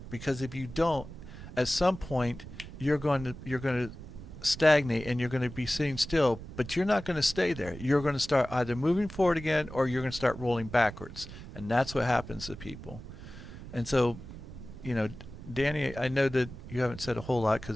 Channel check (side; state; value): right; noise; rumble, 13 dB below the sound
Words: because if you don't, at some point you're going to stagnate and you're going to be sitting still, but you're not going to stay there. You're going to start either moving forward again or you're going to start rolling backwards, and that's what happens to people. And so, Danny, I know that you haven't said a whole lot